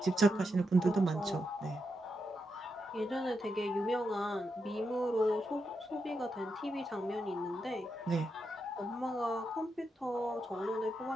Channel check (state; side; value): normal; both; correlation 0.85